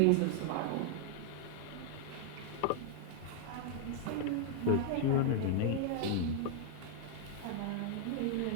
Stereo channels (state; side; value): different; both; correlation 0.00